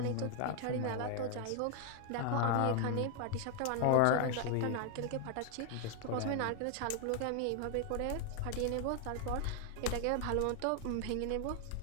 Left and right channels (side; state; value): both; different; correlation 0.00